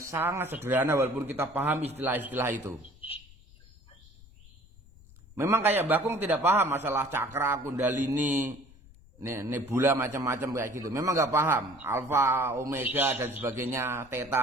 sederhana walaupun kita paham istilah-istilah itu. Memang kayak Bakung tidak paham masalah cakra, kundalini, nebula macam-macam kayak gitu. Memang nggak paham. Alfa, omega dan sebagainya,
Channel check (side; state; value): left; noise; rumble, 24 dB below the sound